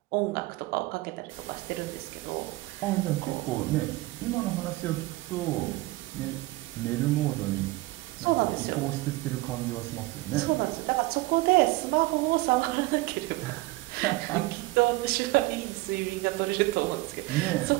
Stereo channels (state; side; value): quieter; left; 20.4 dB